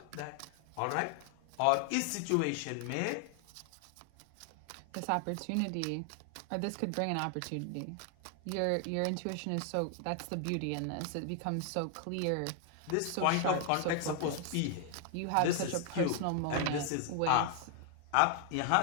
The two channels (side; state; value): both; different; correlation 0.00